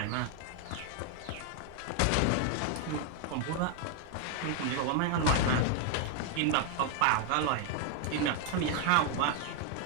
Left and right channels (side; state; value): both; different; correlation 0.00